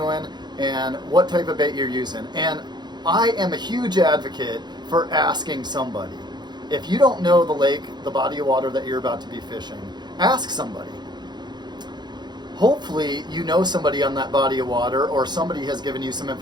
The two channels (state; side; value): late; left; 0.21 ms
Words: and what type of bait you're using. And I am a huge advocate for asking somebody. If you don't know the lake, the body of water that you're about to be fishing, ask somebody. Hopefully you know somebody on that body of water, or somebody has given you some